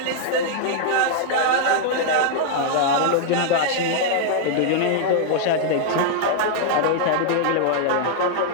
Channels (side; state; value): both; different; correlation -0.01